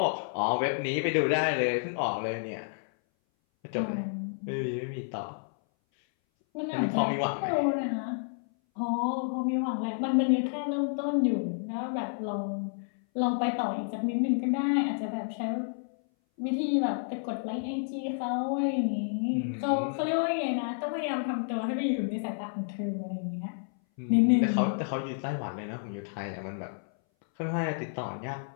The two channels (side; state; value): right; silent; 58 dB below the other